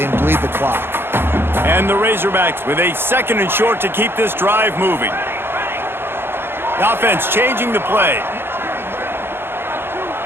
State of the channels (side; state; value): left; late; 0.11 ms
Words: and bleed the clock. And the Razorbacks with a second and short to keep this drive moving. The offense changing the play.